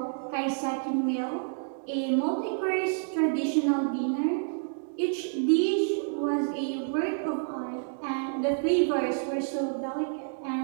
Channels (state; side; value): silent; left; digital silence